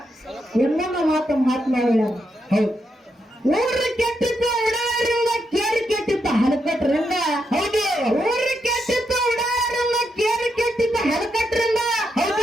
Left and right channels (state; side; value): normal; both; correlation 0.82